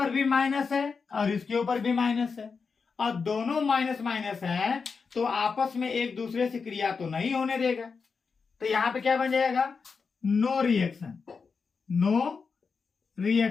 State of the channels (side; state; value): right; quieter; 5.2 dB